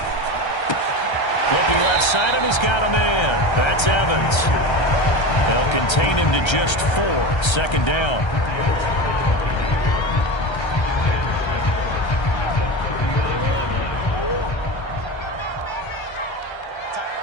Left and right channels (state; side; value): late; right; 1.3 ms